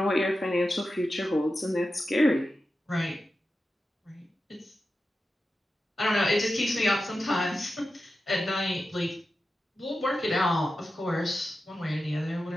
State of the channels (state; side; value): normal; both; correlation 0.92